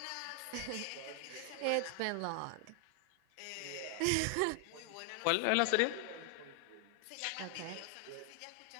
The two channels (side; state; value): both; different; correlation 0.00